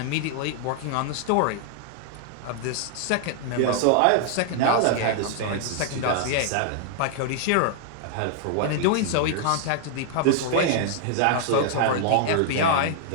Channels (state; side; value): different; both; correlation 0.00